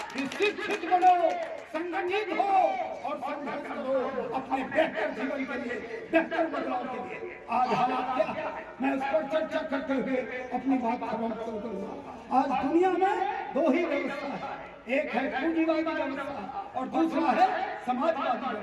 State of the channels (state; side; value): identical; both; correlation 1.00